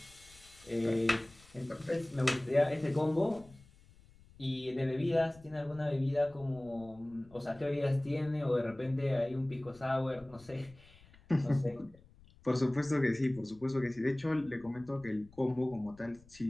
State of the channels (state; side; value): noise; left; rumble, 25 dB below the sound